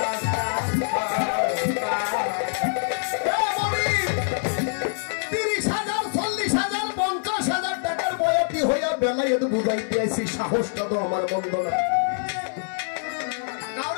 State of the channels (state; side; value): silent; right; 62 dB below the other